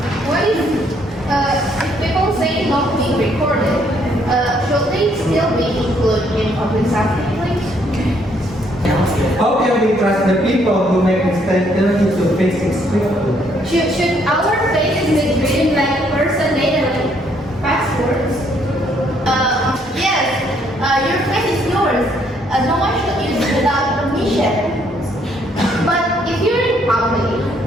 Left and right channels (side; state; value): both; normal; correlation 0.68